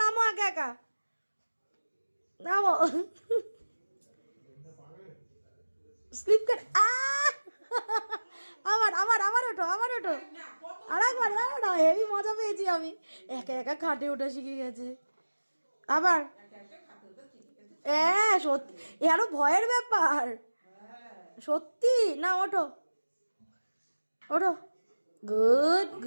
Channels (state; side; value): inverted; both; correlation -1.00